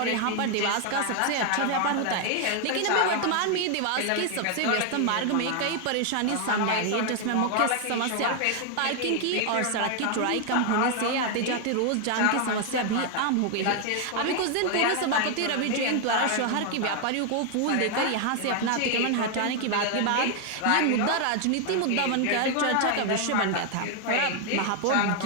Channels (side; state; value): both; different; correlation 0.00